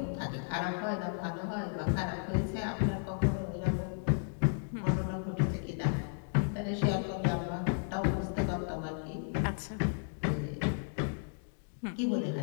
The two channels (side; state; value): right; silent; digital silence